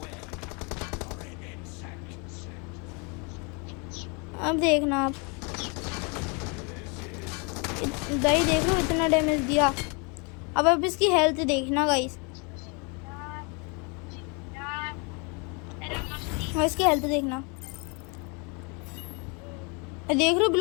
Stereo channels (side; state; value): right; quieter; 32.6 dB